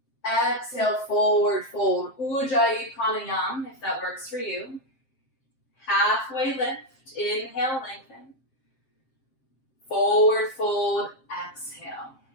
Exhale, forward fold, Ujjayi Pranayama, if that works for you. Halfway lift, inhale, lengthen. Forward fold, exhale.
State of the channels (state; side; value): late; right; 7.6 ms